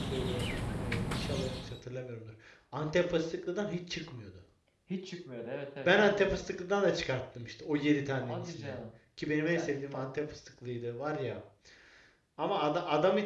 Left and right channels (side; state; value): both; identical; correlation 1.00